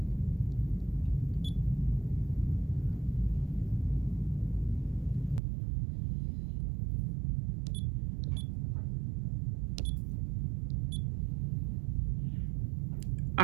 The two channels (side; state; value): left; drops out; at 5.4 s